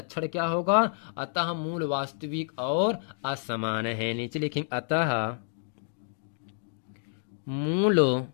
क्या होगा, अतः मूल वास्तविक और असमान है। नीचे लिखेंगे अतः मूल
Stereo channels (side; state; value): right; silent; digital silence